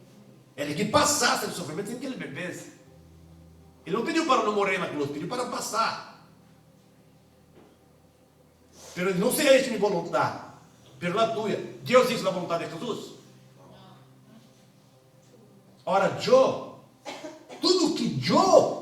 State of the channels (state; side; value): identical; both; correlation 1.00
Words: Ele que passasse o sofrimento sem que ele bebesse. Ele não pediu para não morrer na cruz, pediu para passar. Pero não seria minha vontade, pero a tua. Deus disse a vontade de Jesus. Ora, tudo que eu